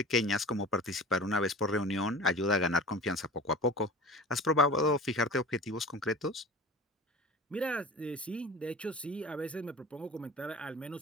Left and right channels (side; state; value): both; normal; correlation 0.38